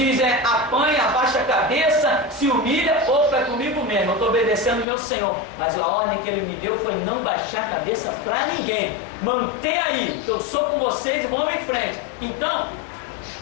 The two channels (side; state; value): right; drops out; at 4.9 s